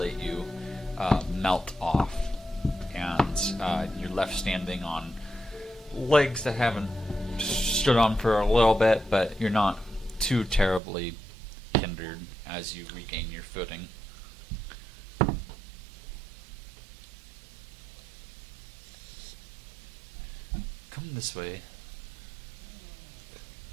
you melt off, and you're left standing on legs that haven't stood on for a little bit, but you're not too terribly hindered as you regain your footing. Come this way.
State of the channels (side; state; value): left; drops out; at 10.8 s